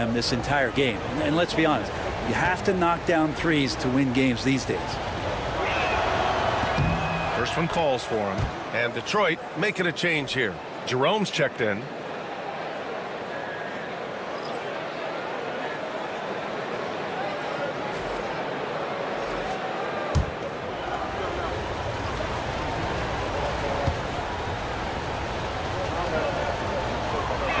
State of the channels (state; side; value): identical; both; correlation 1.00